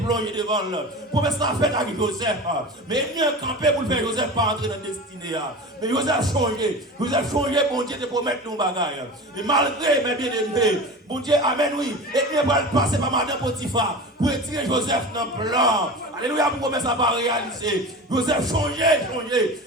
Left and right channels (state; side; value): normal; both; correlation 0.32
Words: devant là. Promesse là faite avec Joseph. Mais il y a un campé pour le faire Joseph pas entrer dans la destinée. Mais Joseph changé. Joseph changé, bon Dieu, de promettre nos bagages. Et malgré mes bien-aimés, bon Dieu, amen, oui. Et il va passer par Madame Potiphar pour retirer Joseph dans le plan. Alléluia, pour commencer à pas réaliser. Joseph changé.